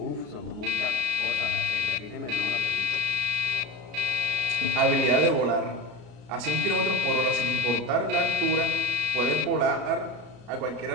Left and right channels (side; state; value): left; late; 33 ms